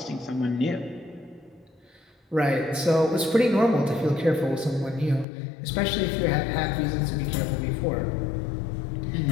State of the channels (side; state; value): right; drops out; at 5.2 s